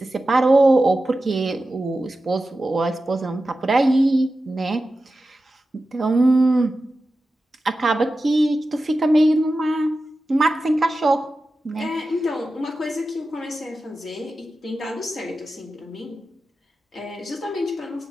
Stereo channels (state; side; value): normal; both; correlation 0.93